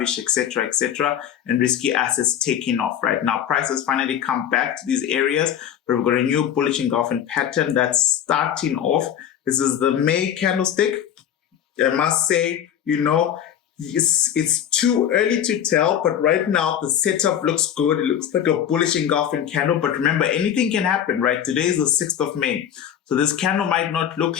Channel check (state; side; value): quieter; right; 9.6 dB